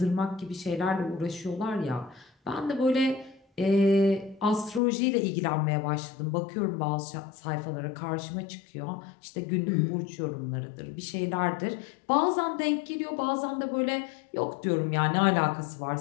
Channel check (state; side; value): drops out; right; at 4.8 s